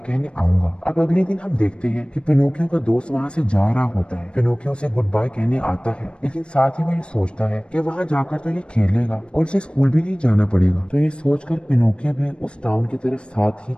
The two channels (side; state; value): right; late; 0.057 ms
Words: कहने आऊंगा। अब अगले दिन हम देखते हैं कि पिनोकियो का दोस्त वहाँ से जा रहा होता है। पिनोकियो उसे गुड बाय कहने आता है, लेकिन साथ ही वो ये सोचता है कि वहाँ जाकर तो ये खेलेगा और उसे स्कूल भी नहीं जाना पड़ेगा। तो ये सोचकर पिनोकियो भी उस टाउन की तरफ साथ ही